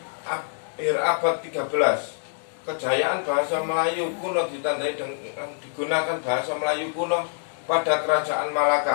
akhir abad 13. Kejayaan bahasa Melayu kuno ditandai dengan digunakan bahasa Melayu kuno pada Kerajaan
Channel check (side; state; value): right; silent; digital silence